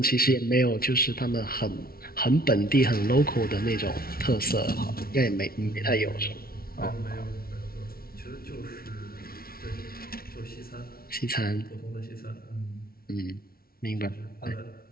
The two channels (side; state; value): right; late; 0.44 ms